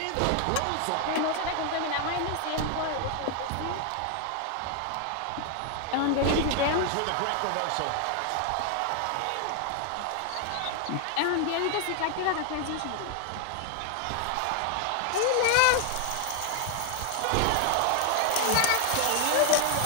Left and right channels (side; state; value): both; different; correlation 0.00